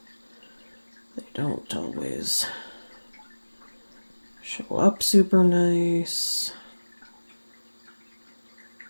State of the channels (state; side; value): inverted; both; correlation -1.00